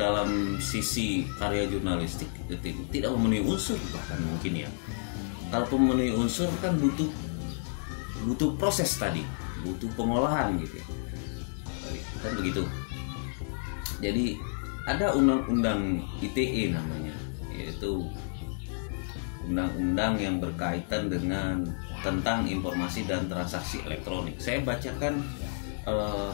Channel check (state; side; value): silent; right; digital silence